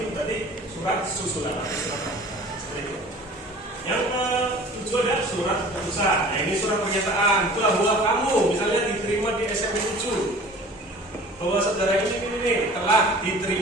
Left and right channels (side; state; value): both; normal; correlation 0.45